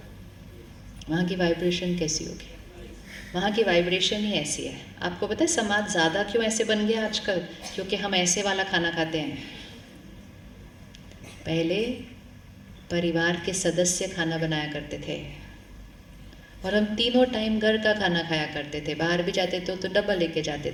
वहाँ की वाइब्रेशन कैसी होगी? वहाँ की वाइब्रेशन ही ऐसी है। आपको पता है समाज ज़्यादा क्यों ऐसे बन गया आजकल? क्योंकि हम ऐसे वाला खाना खाते हैं। पहले परिवार के सदस्य खाना बनाया करते थे और हम तीनों टाइम घर का खाना खाया करते थे। बाहर भी जाते थे तो डब्बा लेके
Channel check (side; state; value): both; identical; correlation 1.00